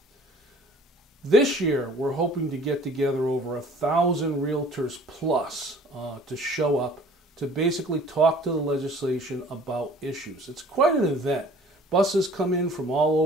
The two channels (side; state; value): both; normal; correlation 0.50